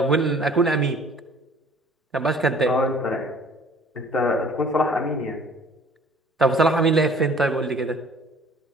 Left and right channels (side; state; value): both; normal; correlation 0.52